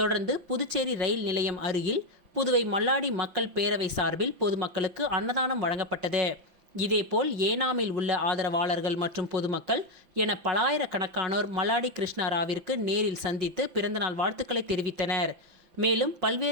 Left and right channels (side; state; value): left; late; 5.7 ms